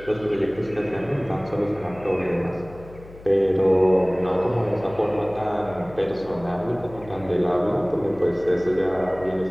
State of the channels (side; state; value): left; noise; hum, 19 dB below the sound